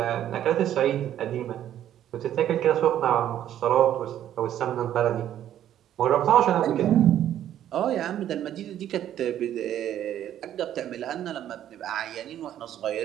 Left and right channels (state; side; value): quieter; left; 11.2 dB